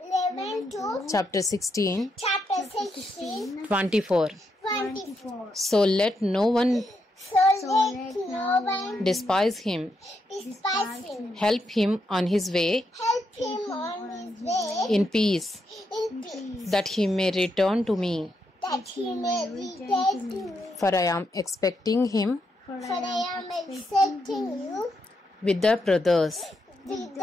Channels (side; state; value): both; normal; correlation 0.81